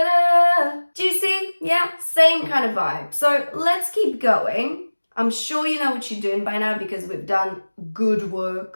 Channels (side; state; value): both; inverted; correlation -1.00